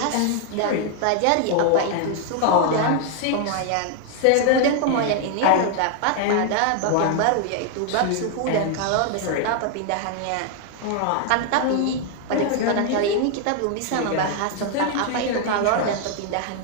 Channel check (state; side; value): different; both; correlation 0.00